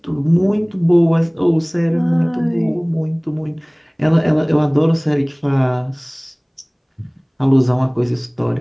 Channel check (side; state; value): both; identical; correlation 1.00